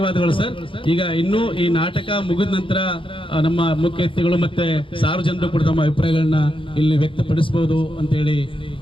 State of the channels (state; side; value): late; right; 0.25 ms